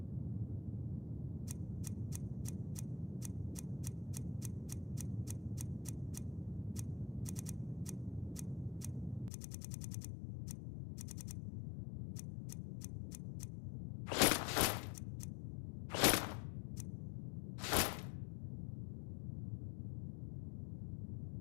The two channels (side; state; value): right; drops out; at 9.3 s